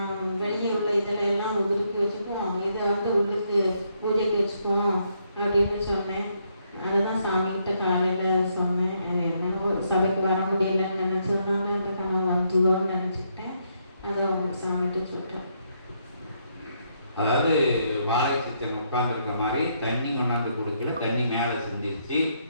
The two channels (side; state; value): both; inverted; correlation -0.75